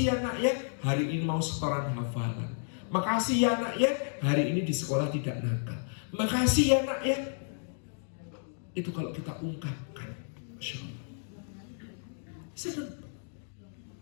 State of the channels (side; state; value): right; silent; digital silence